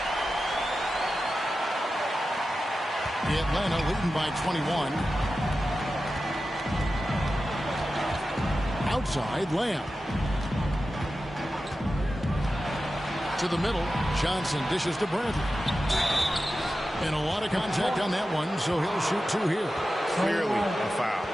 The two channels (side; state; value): both; normal; correlation 0.93